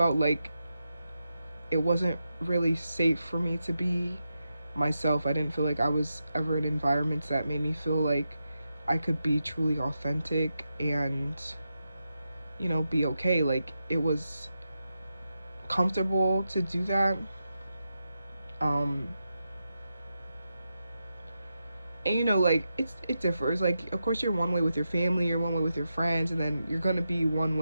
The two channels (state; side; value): inverted; both; correlation -0.88